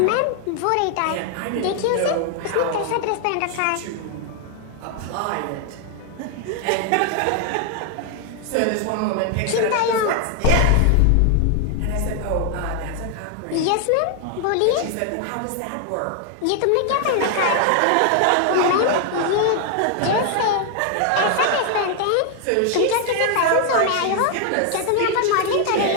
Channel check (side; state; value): both; different; correlation 0.00